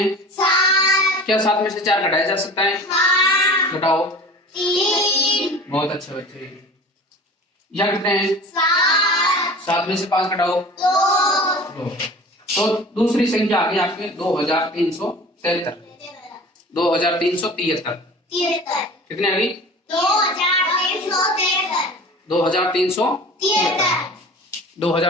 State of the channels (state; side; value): normal; both; correlation 0.40